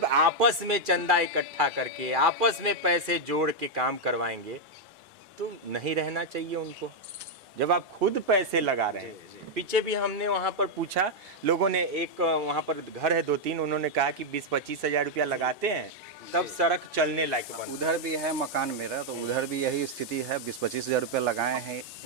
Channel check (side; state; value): both; normal; correlation -0.01